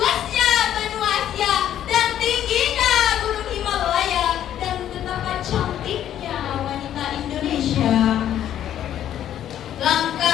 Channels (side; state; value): right; quieter; 11.0 dB